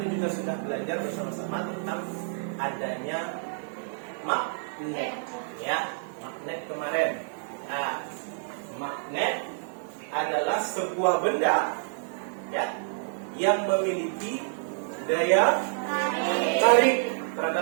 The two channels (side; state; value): left; silent; 59 dB below the other